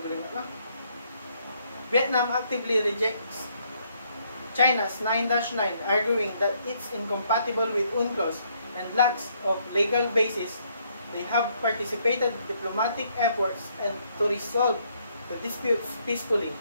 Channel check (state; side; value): inverted; both; correlation -0.70